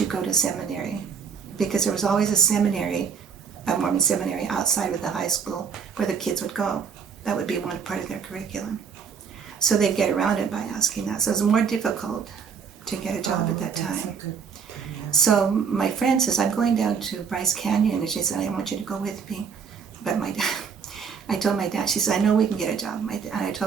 go to seminary?" Because there was always a Mormon seminary outside of the high school where the kids would go. That would be one part of their curriculum. So they'd get around it by asking that. So it was more difficult to get a job at that time. So my friend says, I'm going down to Bryce Canyon, and she said, I want you to go with me. But my dad, I told my dad, she said, I know we can get a job. And I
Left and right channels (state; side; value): quieter; left; 6.4 dB